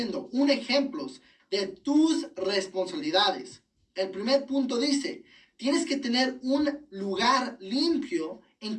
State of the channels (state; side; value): identical; both; correlation 1.00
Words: un ejemplo de tus responsabilidades. El primer punto dice, tienes que tener un lugar limpio en